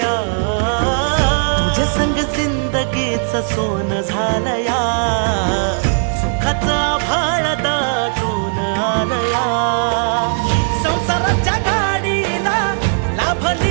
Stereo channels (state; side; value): silent; left; 68 dB below the other